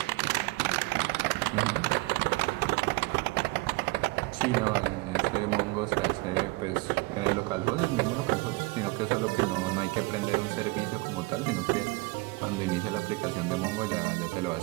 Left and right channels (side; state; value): left; quieter; 24.2 dB